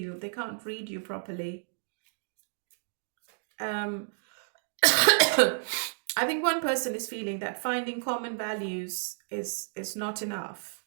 They can't read you properly. I think one person is feeling that finding common values is not enough.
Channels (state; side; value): silent; left; digital silence